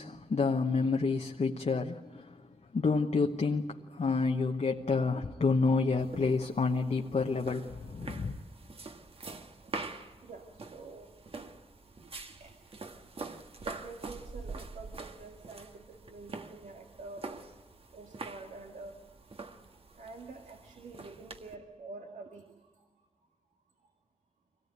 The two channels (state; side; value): quieter; right; 3.4 dB